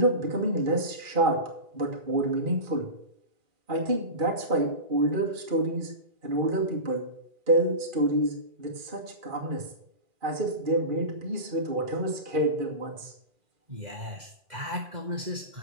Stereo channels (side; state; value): left; late; 2.4 ms